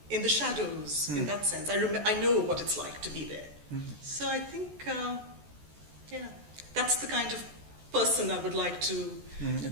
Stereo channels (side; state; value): left; late; 14 ms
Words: in the shadows, in that sense. I know what it's like to be there. So I think, that's the kind of person I would like to